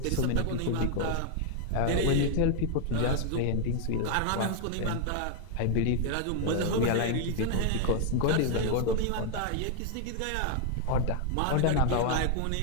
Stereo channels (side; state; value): both; different; correlation 0.00